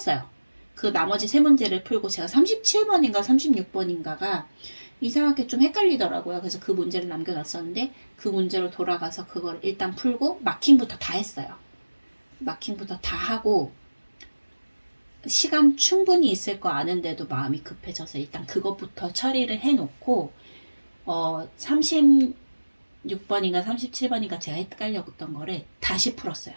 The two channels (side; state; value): both; inverted; correlation -1.00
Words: 그 나머지 세 문제를 풀고 제가 37번인가 36번인가가 이상하게 좀 헷갈리더라고요. 그래서 그 문제를 남겨놨었는데 그 문제로 돌아가서 그걸 일단 풀고 마킹부터 다 했어요. 마킹부터 다 하고 시간 충분히 있을 거 아는데도 마음이 급해져서 일단 그것부터 처리를 해놓고 36번인가 37번인가 제가 헷갈렸던 거를 다시 풀었어요.